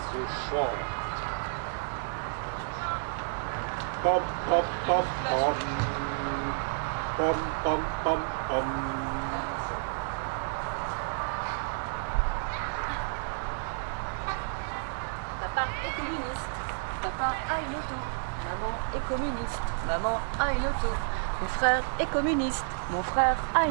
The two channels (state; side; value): silent; left; 57 dB below the other